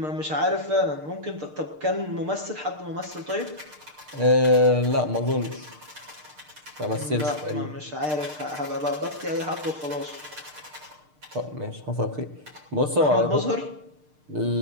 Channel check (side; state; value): left; late; 6.6 ms